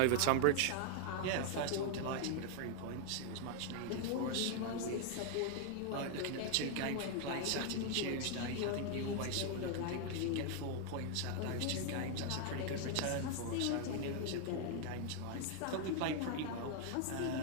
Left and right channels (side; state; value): both; different; correlation 0.00